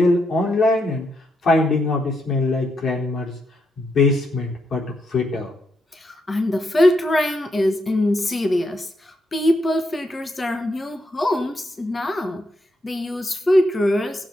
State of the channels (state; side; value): normal; both; correlation 0.80